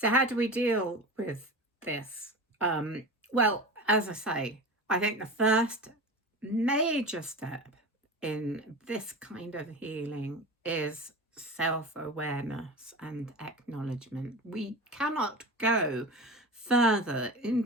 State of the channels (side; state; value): both; normal; correlation 0.30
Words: how do we deal with this? Well, as I say, I think the first major step in this kind of healing is self awareness and acknowledgement. We cannot go further